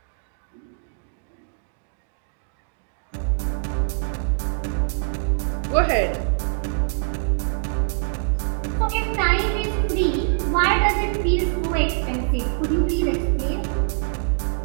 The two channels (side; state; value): left; silent; digital silence